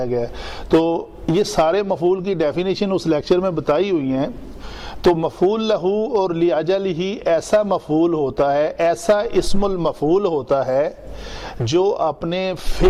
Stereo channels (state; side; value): identical; both; correlation 1.00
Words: گیا. تو یہ سارے مفعول کی ڈیفینیشن اس لیکچر میں بتائی ہوئی ہیں. تو مفعول لہو اور لِأَجَلِهِ ایسا مفعول ہوتا ہے، ایسا اسم المفعول ہوتا ہے جو اپنے